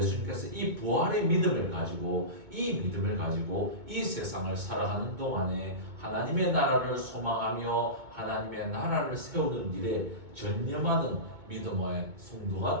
이 부활의 믿음을 가지고 이 세상을 살아가는 동안에 하나님의 나라를 소망하며 하나님의 나라를 세우는 일에 전념하는 믿음의 성도가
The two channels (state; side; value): late; left; 2.2 ms